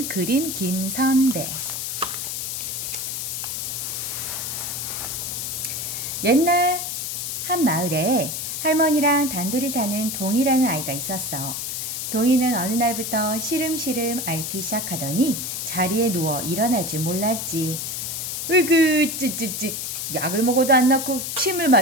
그림 김선배. 옛날 한 마을에 할머니랑 단둘이 사는 동이라는 아이가 있었어. 동이는 어느 날부터 시름시름 앓기 시작하더니 자리에 누워 일어날 줄 몰랐지. 으그 찌찌찌, 약을 먹어도 안 낫고 침을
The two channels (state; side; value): noise; left; hiss, 4 dB below the sound